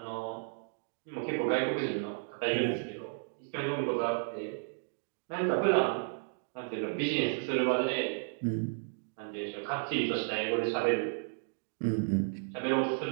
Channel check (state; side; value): silent; left; digital silence